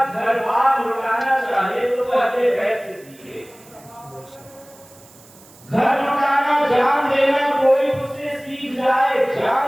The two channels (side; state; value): right; noise; hiss, 25 dB below the sound